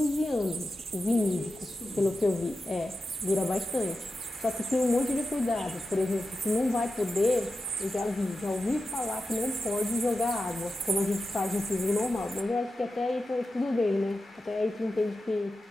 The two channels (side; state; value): both; normal; correlation 0.91